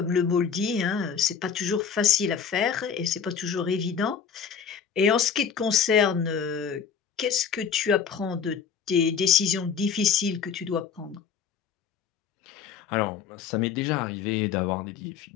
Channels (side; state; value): right; quieter; 7.0 dB